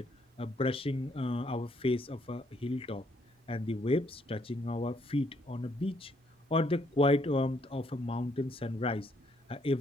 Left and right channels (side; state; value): both; normal; correlation 0.70